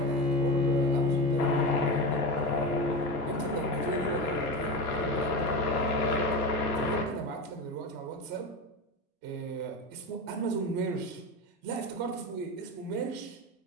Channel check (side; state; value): both; normal; correlation 0.23